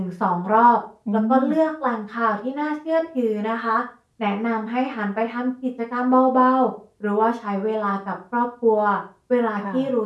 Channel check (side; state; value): both; identical; correlation 1.00